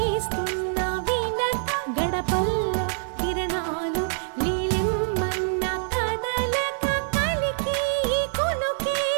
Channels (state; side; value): silent; left; digital silence